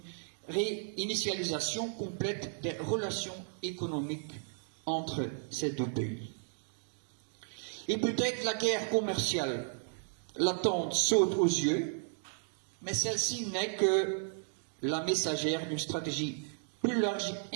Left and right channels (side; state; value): left; silent; digital silence